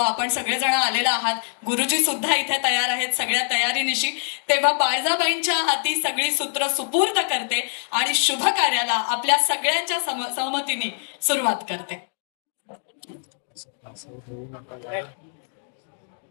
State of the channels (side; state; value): right; silent; digital silence